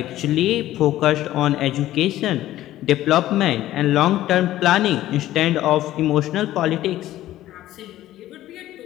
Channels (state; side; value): quieter; right; 14.3 dB